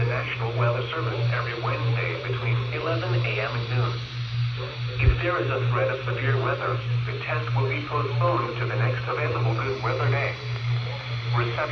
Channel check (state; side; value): identical; both; correlation 1.00